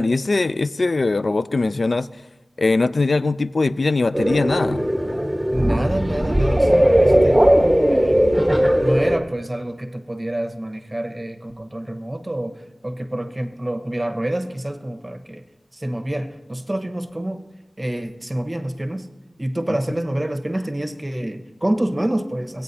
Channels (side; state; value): both; normal; correlation 0.98